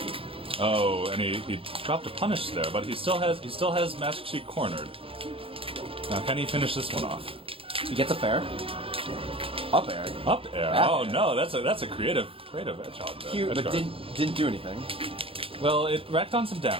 Oh, and he dropped a punish there, but he still has MaskedSheik cornered. Now, can he finish this one off? He gets a fair. Up air. Up air. Back Oh air. no, that's a creative hedgehog there. Cute, but didn't do anything. Well, it racked on some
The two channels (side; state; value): left; late; 0.27 ms